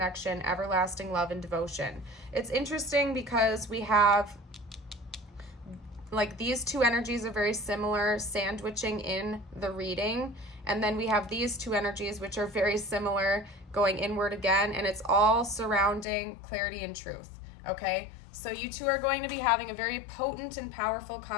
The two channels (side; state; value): right; drops out; at 16.1 s